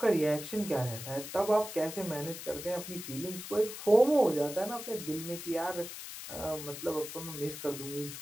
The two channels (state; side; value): noise; left; hiss, 10 dB below the sound